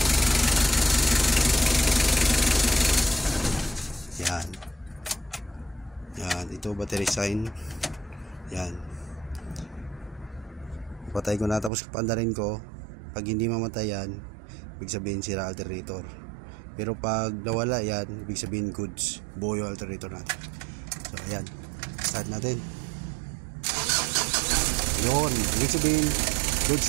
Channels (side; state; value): left; drops out; at 11.7 s